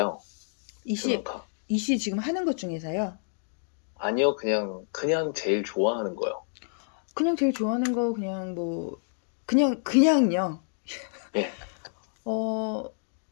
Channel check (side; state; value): right; silent; digital silence